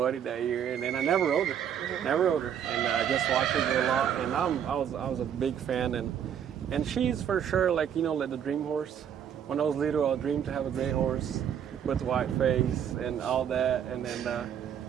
that year, and then I never rode her, and I just watched her go a lot. And I was a big fan, and she's for sure like like the dream horse. When I was little, I dreamed to have a great horse with white face and all that, and then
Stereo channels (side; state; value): left; quieter; 8.9 dB